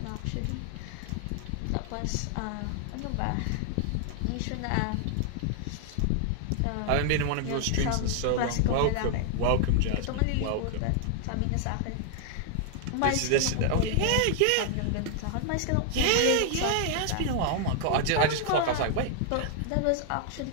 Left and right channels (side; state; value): both; different; correlation 0.00